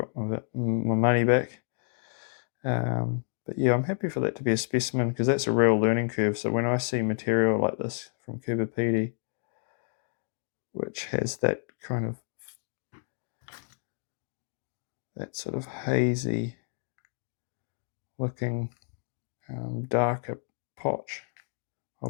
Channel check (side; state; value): right; silent; digital silence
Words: my money back. But yeah, I'm happy for that to be a specimen, because that's a real learning curve. So when I see material like this from Coober Pedy, which has that kind of, that sort of hazy looking darker potch, I'll